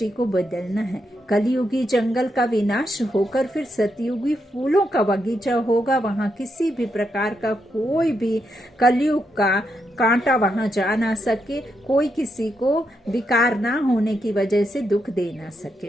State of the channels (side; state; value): both; normal; correlation 0.81